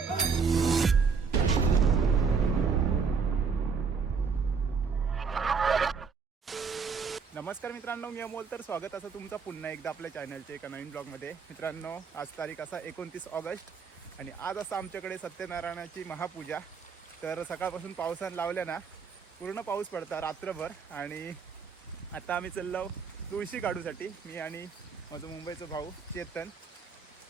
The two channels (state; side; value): quieter; left; 5.6 dB